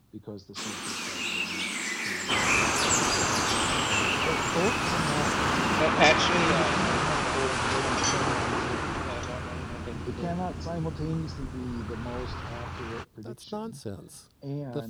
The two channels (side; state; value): both; identical; correlation 1.00